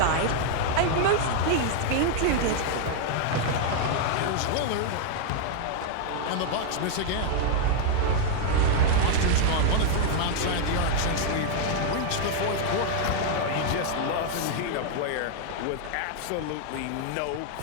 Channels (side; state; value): both; different; correlation -0.01